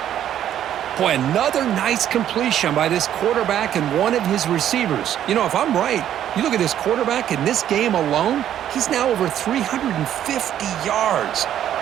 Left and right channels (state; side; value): quieter; left; 10.8 dB